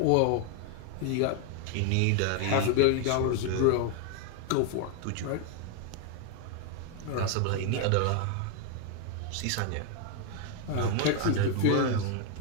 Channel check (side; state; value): both; different; correlation 0.01